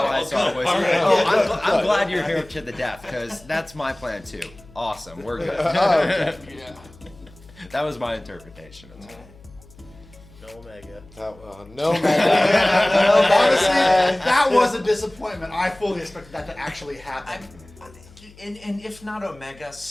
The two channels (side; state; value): left; noise; hum, 24 dB below the sound